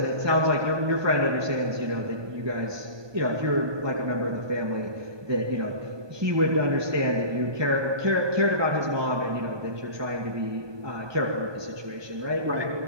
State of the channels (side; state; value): left; late; 1.2 ms